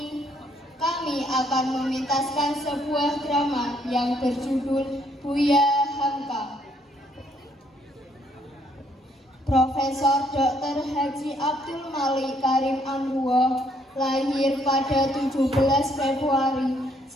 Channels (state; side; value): normal; both; correlation 0.69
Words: kami akan mementaskan sebuah drama yang berjudul Buya Hamka. Profesor Dr. Haji Abdul Malik Karim Amruwoh lahir pada 17 Februari